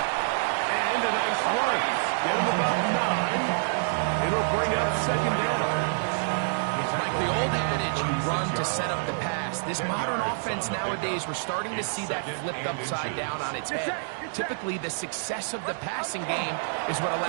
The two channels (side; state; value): left; silent; digital silence